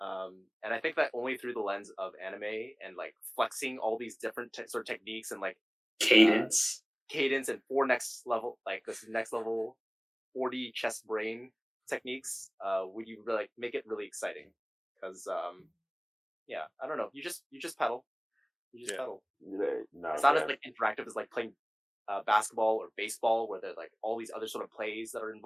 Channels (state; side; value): identical; both; correlation 1.00